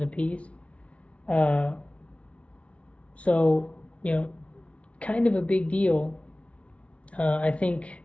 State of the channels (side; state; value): right; late; 0.062 ms